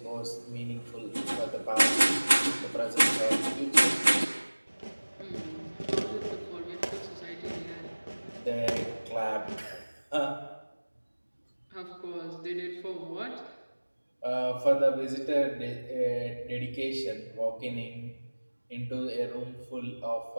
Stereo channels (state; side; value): inverted; both; correlation -1.00